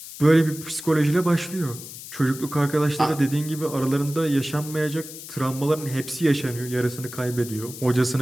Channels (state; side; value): noise; left; hiss, 13 dB below the sound